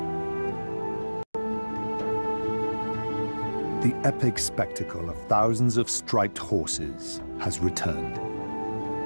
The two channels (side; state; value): both; inverted; correlation -1.00